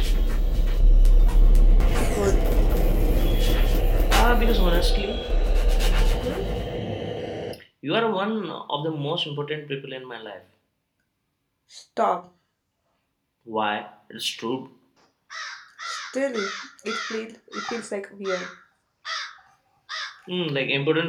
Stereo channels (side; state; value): both; identical; correlation 1.00